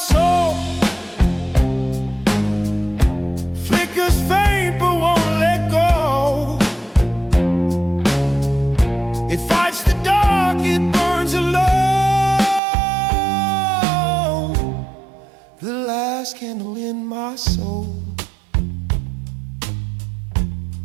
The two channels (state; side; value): drops out; left; at 12.6 s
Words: flickers faint but won't let go. It fights the dark, it burns alone. The last candle in my soul.